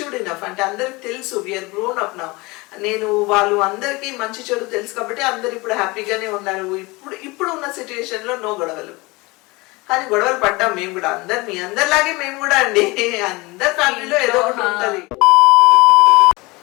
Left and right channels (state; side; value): quieter; right; 24.0 dB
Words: ఇనఫ్, అంటే అందరికి తెలుసు, వీఆర్ గ్రోన్ అప్ నౌ. నేను వాళ్ళు అందరికీ మంచి చెడు తెలుసు కాబట్టి అందరు ఇప్పుడు హ్యాపీగానే ఉన్నారు. ఇప్పుడు ఉన్న సిచ్యువేషన్ లో నో గొడవలు. కానీ గొడవలు పడ్డాం మేము కూడా, మీ అందరిలాగే మేము కూడా అండి. అందరి ఫ్యామిలీలో ఏదో ఒకటి ఉంటుంది.